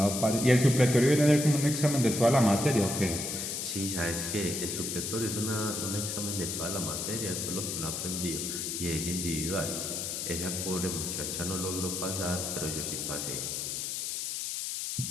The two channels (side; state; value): left; noise; hiss, 3 dB below the sound